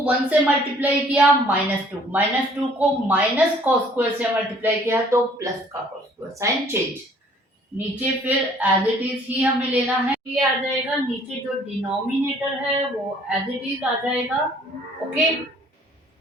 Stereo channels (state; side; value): normal; both; correlation 0.58